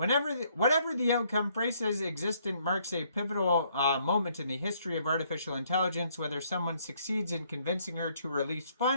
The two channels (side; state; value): both; inverted; correlation -0.68